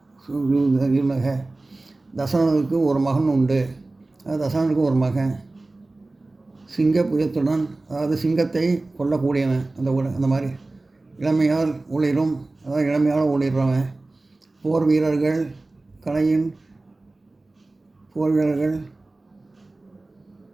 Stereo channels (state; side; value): quieter; left; 3.1 dB